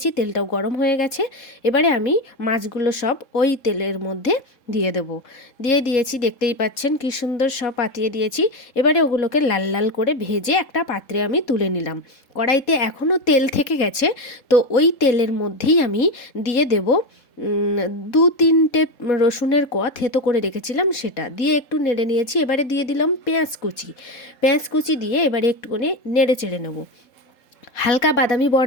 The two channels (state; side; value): late; right; 3.7 ms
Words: তেলটাও গরম হয়ে গেছে। এবারে আমি মাছগুলো সব ওই তেলের মধ্যে দিয়ে দেবো। দিয়েছি, দেখতেই পাচ্ছেন কি সুন্দর সব পাতিয়ে দিয়েছি। এবারে ওগুলোকে লাল লাল করে ভেজে একটা পাত্রে আমি তুলে নিলাম। কড়াইতে এখনও তেল থেকে গেছে, তো ওই তেলের মধ্যেই আমি দিয়ে দেব 2-3টে রসুনের কোয়া থেতো করে রেখেছিলাম, সেটা দিয়ে একটু নেড়ে নিয়েছি। এবারে দিয়ে দিলাম পেঁয়াজ কুচি দিয়ে এবারে একটুখানি নেড়ে চেড়ে নেবো। হালকা বাদামি